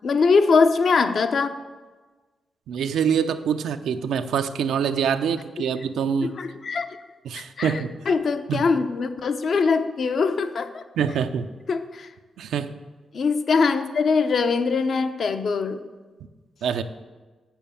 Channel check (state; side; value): normal; both; correlation 0.79